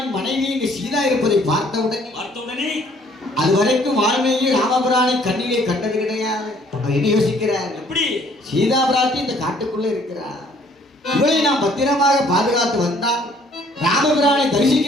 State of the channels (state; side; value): normal; both; correlation 0.60